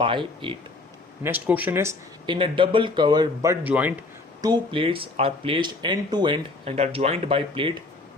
8. Next question is, in a double cover butt joint, two plates are placed end to end and are joined by plate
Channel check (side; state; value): right; quieter; 3.3 dB